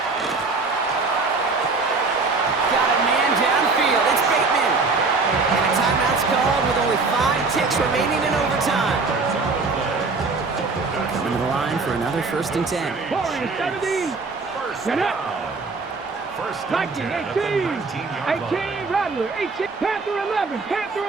Downfield, it's Bateman. And a timeout's called with only 5 ticks remaining in overtime. Coming to the line for another 1st and 10. Warriors 70. Get up. Viking 18. 18, Rattler 18. Panther 11. Panther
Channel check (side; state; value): left; quieter; 4.0 dB